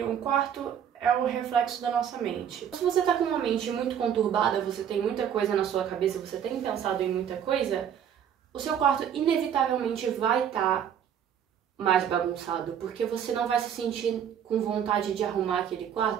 um quarto é o reflexo da nossa mente. Se você tá com uma mente muito conturbada, você tem muita coisa na sua cabeça, você tem pensado em muita coisa, o seu quarto inevitavelmente vai estar mais bagunçado, porque você não vai se sentir com vontade de arrumar aquele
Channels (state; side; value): quieter; left; 8.9 dB